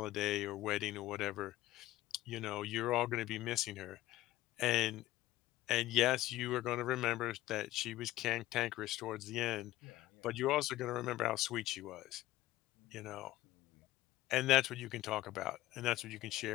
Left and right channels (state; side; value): quieter; right; 16.2 dB